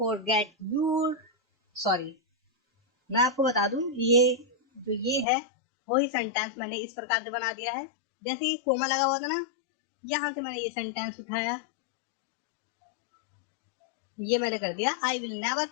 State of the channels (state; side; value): drops out; right; at 5.2 s